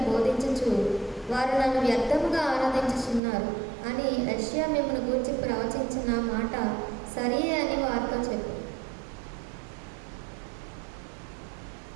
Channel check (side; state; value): left; drops out; at 3.2 s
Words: బోధించుచు వారు నన్ను వ్యర్థముగా ఆరాధించుచున్నారు అని యెషయా మిమ్మును గూర్చి ప్రవచించిన మాట సరియే అని వారితో చెప్పు.